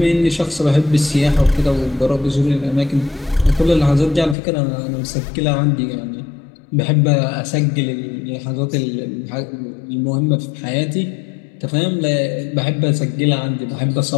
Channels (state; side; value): drops out; right; at 4.4 s